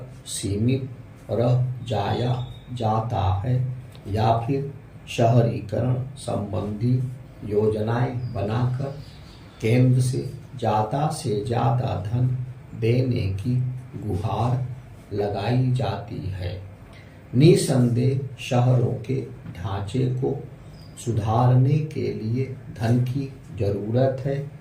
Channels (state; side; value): identical; both; correlation 1.00